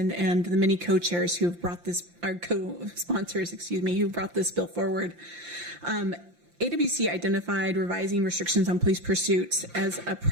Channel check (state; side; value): late; left; 5.8 ms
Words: and the many co-chairs who have brought this, our co-sponsors, who brought this bill forward. AWC identified revising restrictions on police pursuits as a